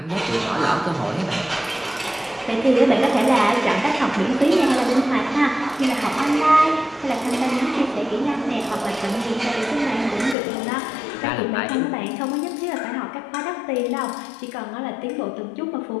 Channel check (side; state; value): right; drops out; at 10.4 s